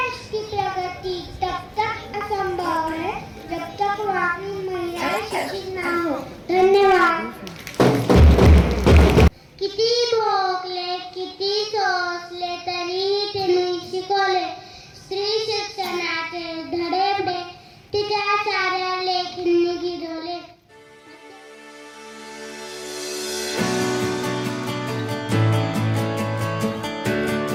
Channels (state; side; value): identical; both; correlation 1.00